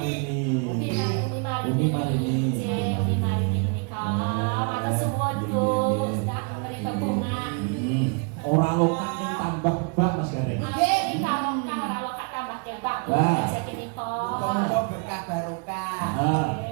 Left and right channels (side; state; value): left; quieter; 36.4 dB